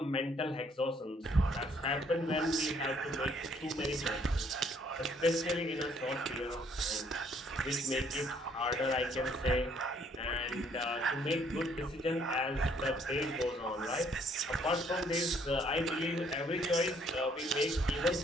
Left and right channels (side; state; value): both; normal; correlation 0.65